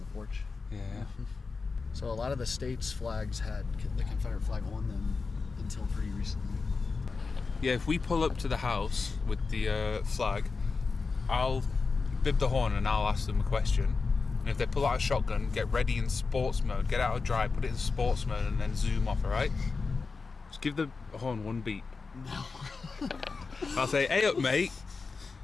porch. Yeah. So a lot of the states' flags had the Confederate flag on them until pretty recently. Yeah, if we pull up to the house with the flag, I'll bib the horn and I'll ask them a question. And if they pull out a shotgun, get ready in sports mode, get out of drive, put it in sports mode, and then zoom off, alright? Just give the horn one beat. No. I'll say, hey up, mate.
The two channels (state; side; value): quieter; right; 4.4 dB